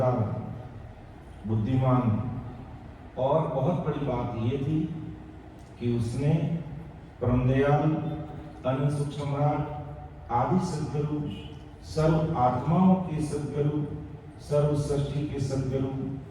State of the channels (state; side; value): identical; both; correlation 1.00